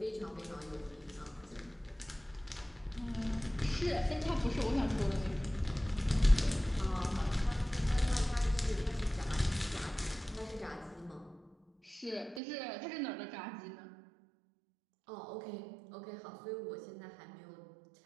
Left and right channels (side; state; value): left; drops out; at 12.4 s